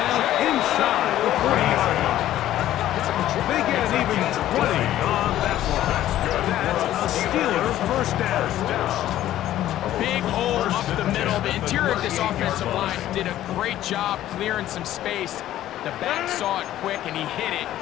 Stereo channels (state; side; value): quieter; right; 13.2 dB